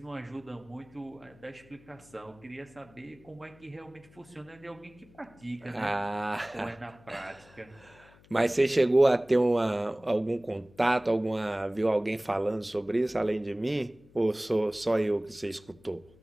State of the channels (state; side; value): noise; left; hum, 26 dB below the sound